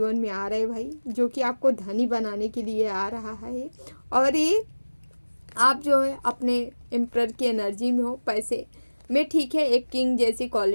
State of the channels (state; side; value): inverted; both; correlation -1.00